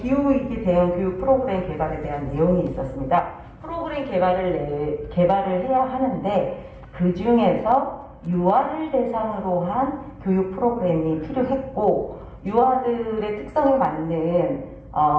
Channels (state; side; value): identical; both; correlation 1.00